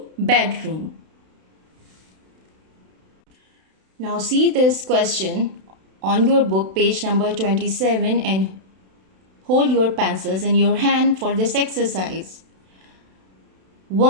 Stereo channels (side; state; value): left; late; 32 ms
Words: bedroom. Now see this question on your book, page number 27, and hold your pencils in your hand for this exercise.